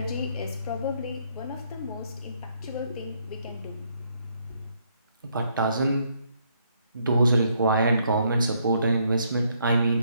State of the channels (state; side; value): inverted; both; correlation -0.71